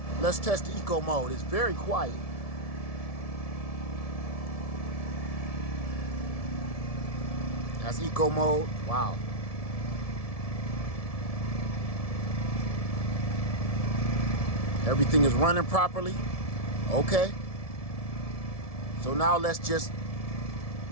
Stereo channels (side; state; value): right; late; 1.7 ms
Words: let's test the eco mode. It's very quiet. That's eco mode. Wow. Everything is running properly. Okay. So now let's just